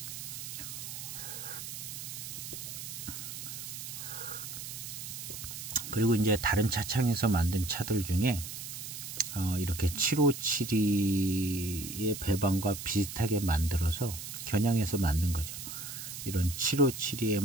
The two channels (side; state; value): right; noise; hiss, 8 dB below the sound